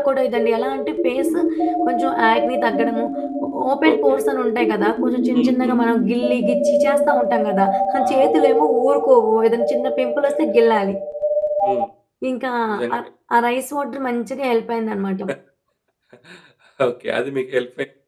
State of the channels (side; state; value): both; identical; correlation 1.00